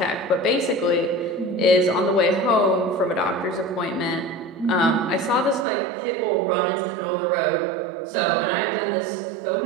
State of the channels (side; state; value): left; drops out; at 5.7 s